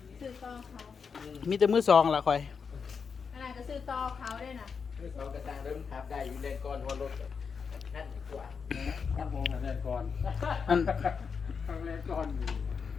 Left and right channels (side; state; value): right; quieter; 5.9 dB